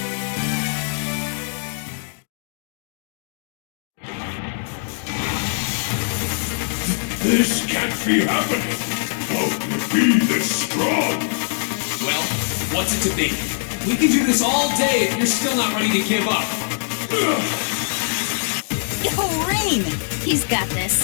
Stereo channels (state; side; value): silent; right; digital silence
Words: This can't be happening! How can it be this strong? Well, what's it to be? We can do this all day if you're still not ready to give up. Yo, Rain! He's got